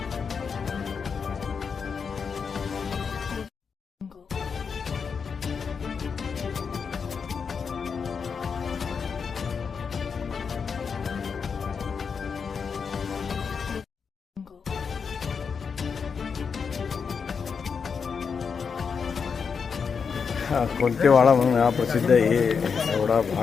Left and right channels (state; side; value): quieter; right; 6.0 dB